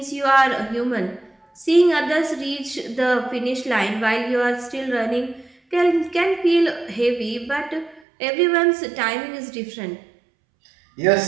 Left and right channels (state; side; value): drops out; left; at 8.0 s